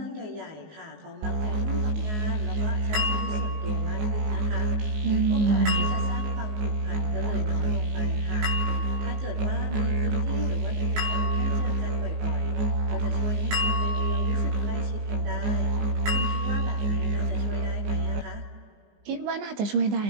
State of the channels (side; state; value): left; late; 19 ms